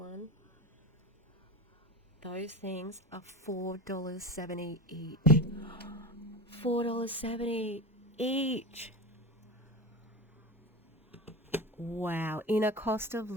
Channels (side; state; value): both; normal; correlation 0.27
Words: Those things are $4.70 each. $4.70 each. Wow, in a cost of